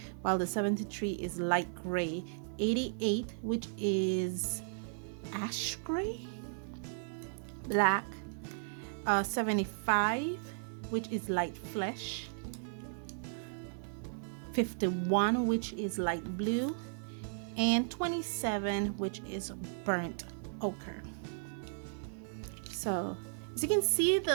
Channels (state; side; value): silent; left; 54 dB below the other